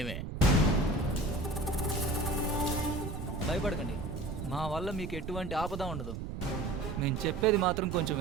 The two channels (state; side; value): noise; right; rumble, 6 dB below the sound